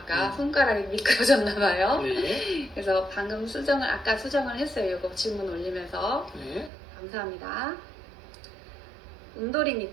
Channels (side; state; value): left; drops out; at 6.7 s